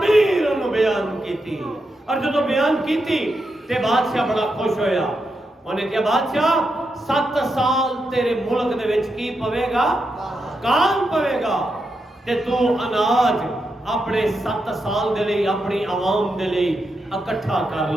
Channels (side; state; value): both; normal; correlation 0.85